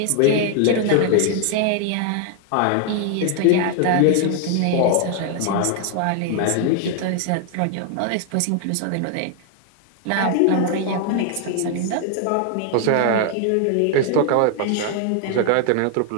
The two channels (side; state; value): both; different; correlation 0.00